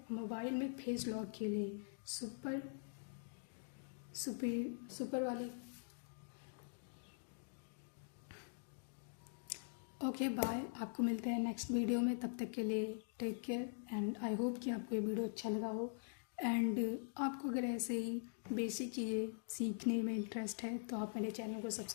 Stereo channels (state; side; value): silent; right; digital silence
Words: मोबाइल में फेस लॉक के लिए सुपर वाली। ओके बाय, आपको मिलते हैं नेक्स्ट वीडियो में। तब तक के लिए take care and I hope कि आपको ये वीडियो अच्छा लगा हो। एंड आपको अगर ऐसे ही बेसिक चीज़ें सीखने में इंटरेस्ट है तो आप मेरे चैनल को